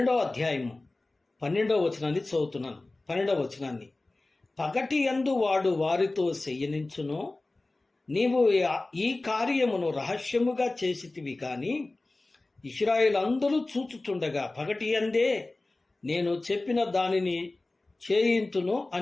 వచనాన్ని చదువుతున్నాను. 12వ వచనాన్ని, పగటి యందు వాడు వారితో చెయ్యనించును, నీవు ఈ కార్యమును రహస్యముగా చేసితివి కాని ఇశ్రాయేలందరూ చూచుచుండగా పగటి యందే నేను చెప్పిన దానిని చేయింతును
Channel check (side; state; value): right; quieter; 3.0 dB